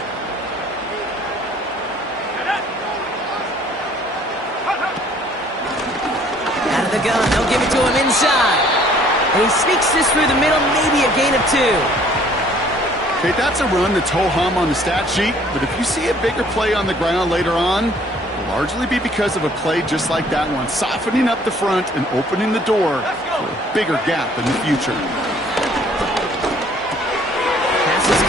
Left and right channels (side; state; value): both; normal; correlation 0.58